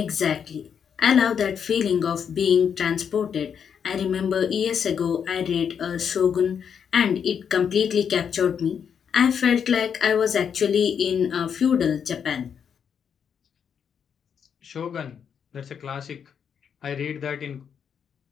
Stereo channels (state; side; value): quieter; right; 7.5 dB